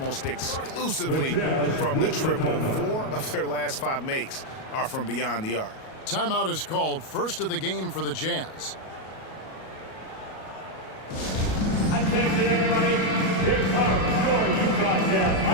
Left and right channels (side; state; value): right; late; 37 ms